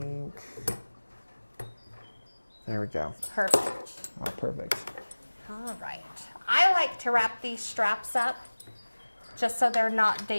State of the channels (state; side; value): inverted; both; correlation -1.00